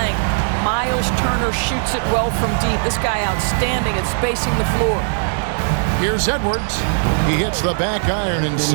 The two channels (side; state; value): left; silent; digital silence